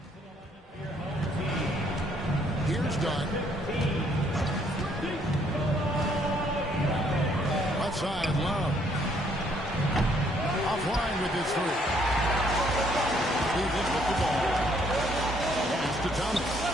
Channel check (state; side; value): normal; both; correlation 0.67